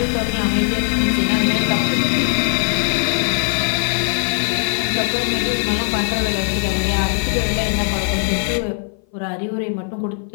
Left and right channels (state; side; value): silent; right; 58 dB below the other